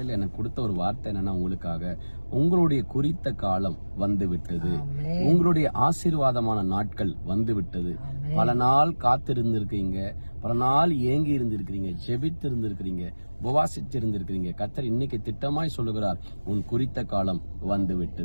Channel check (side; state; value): both; inverted; correlation -1.00